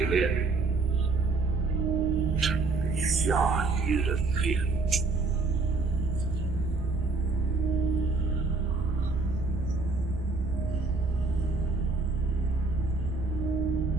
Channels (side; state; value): left; quieter; 3.8 dB